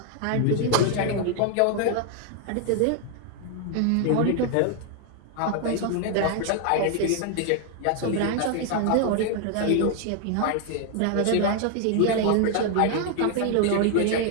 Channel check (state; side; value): different; both; correlation 0.00